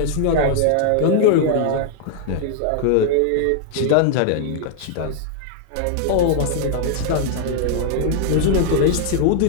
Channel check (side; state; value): both; different; correlation 0.00